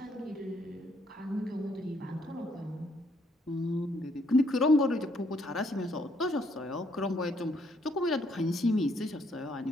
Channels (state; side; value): normal; both; correlation 0.70